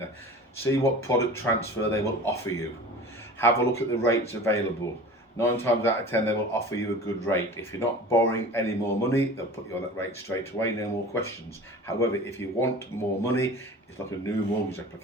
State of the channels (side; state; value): both; normal; correlation 0.38